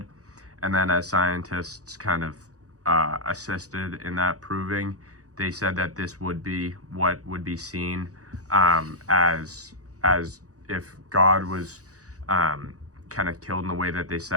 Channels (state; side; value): late; left; 0.66 ms